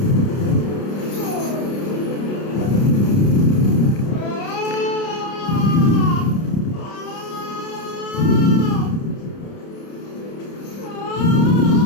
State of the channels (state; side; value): late; right; 30 ms